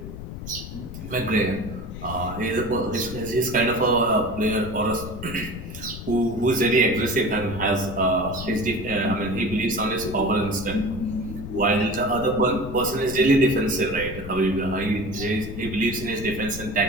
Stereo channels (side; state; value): left; noise; rumble, 10 dB below the sound